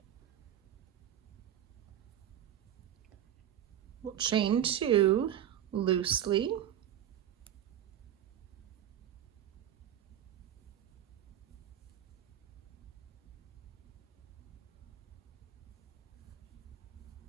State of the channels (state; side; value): quieter; left; 10.7 dB